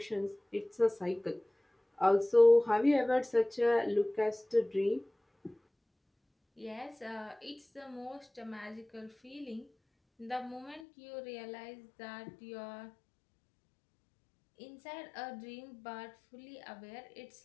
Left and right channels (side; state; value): right; drops out; at 10.8 s